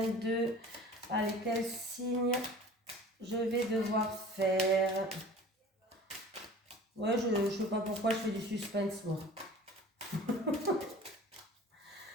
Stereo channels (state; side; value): normal; both; correlation 0.43